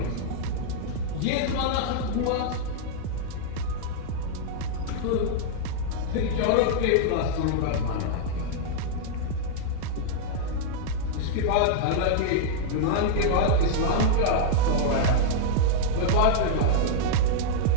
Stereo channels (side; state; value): both; different; correlation -0.02